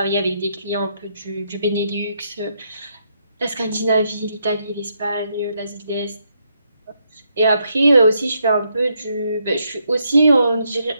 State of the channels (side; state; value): both; inverted; correlation -0.77